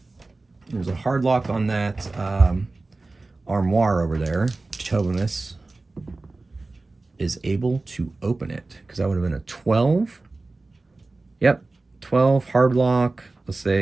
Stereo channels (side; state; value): left; quieter; 3.3 dB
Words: There's a hard lock on that armoire over there. Tobamus is able to open it because that would have been a 12. Yep, 12 hard lock. Let's